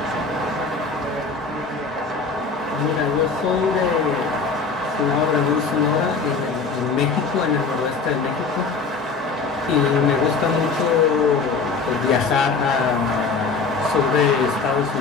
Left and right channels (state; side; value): quieter; right; 4.5 dB